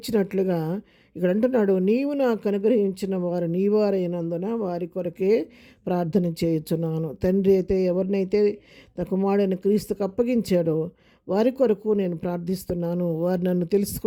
ఇక్కడ అంటున్నాడు, నీవు నాకు అనుగ్రహించిన వారు నీవారైనందున వారి కొరకే ప్రార్థన చేయుచున్నాను. తండ్రి అయితే ఎవరినైతే తన కుమారుడైన క్రీస్తుకు అప్పగించాడో వారి కొరకు నేను ప్రార్థిస్తున్నాను. వారు నన్ను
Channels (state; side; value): identical; both; correlation 1.00